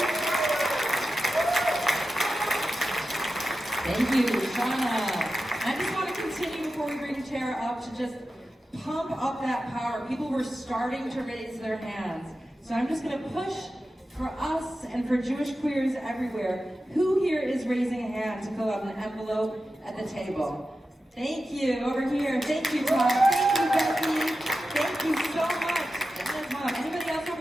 Thank you, Shauna. I just want to continue before we bring Terra up to just pump up that power. People were starting to raise their hands. So I'm just going to push for us and for Jewish queers everywhere. Who here is raising a hand to fill out an envelope at the table? Thank you. Over here. Thank you, Todd. Thank you, Becky. Thank you so much. Mom. Anybody else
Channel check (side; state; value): both; normal; correlation 0.92